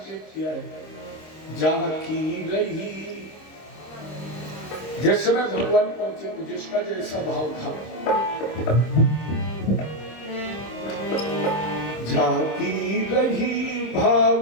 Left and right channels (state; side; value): late; right; 26 ms